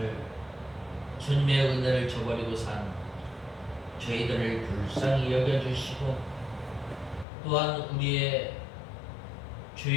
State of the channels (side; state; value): right; drops out; at 7.2 s